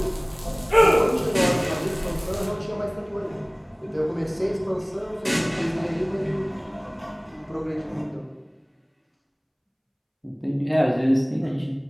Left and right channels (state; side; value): identical; both; correlation 1.00